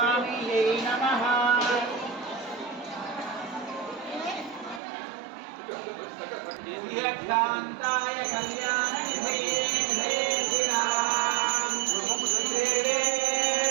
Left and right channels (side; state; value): left; drops out; at 4.8 s